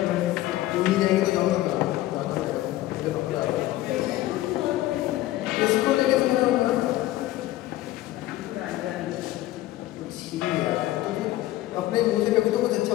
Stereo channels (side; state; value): right; quieter; 15.7 dB